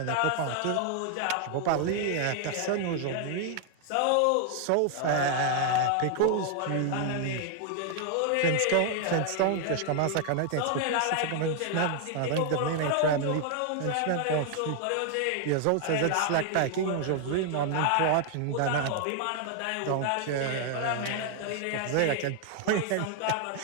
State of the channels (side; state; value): both; different; correlation 0.00